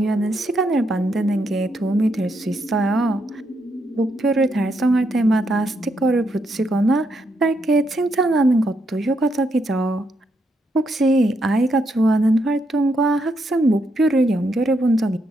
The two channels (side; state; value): both; normal; correlation 0.78